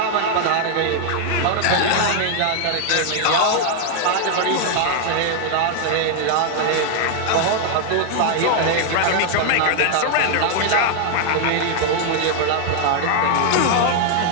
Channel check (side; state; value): both; different; correlation 0.00